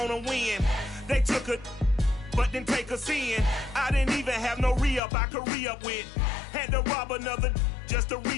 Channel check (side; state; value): right; drops out; at 5.0 s